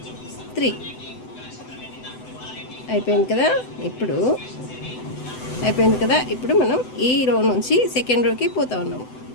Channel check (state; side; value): late; right; 7.9 ms